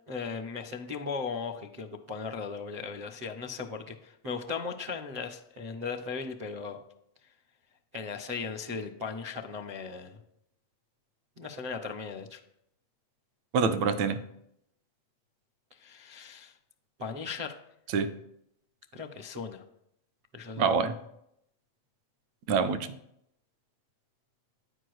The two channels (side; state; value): left; late; 7.9 ms